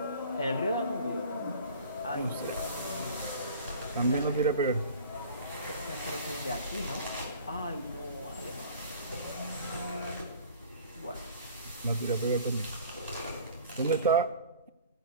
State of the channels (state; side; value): inverted; both; correlation -0.45